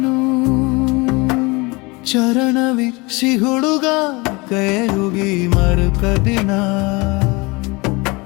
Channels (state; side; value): quieter; right; 25.5 dB